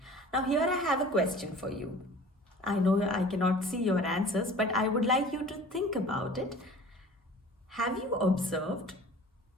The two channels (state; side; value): normal; both; correlation 0.44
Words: Now here I have a question for you. I know I cannot see your answers, but I would like you to think about it. Have you observed